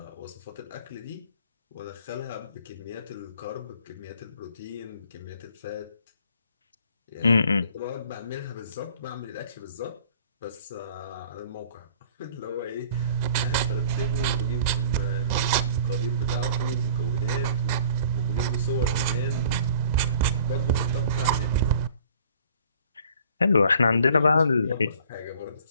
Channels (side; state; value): both; inverted; correlation -0.51